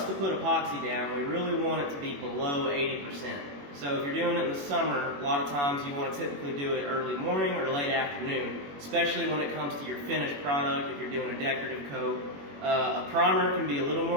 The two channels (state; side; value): late; left; 21 ms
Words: to put epoxy down, we really want it to be below 80%. So if you're doing it in the summer, a lot of times you want to typically do it early morning or late afternoon, especially when it comes to your finished product, if you're doing a decorative coat. A primer can be a little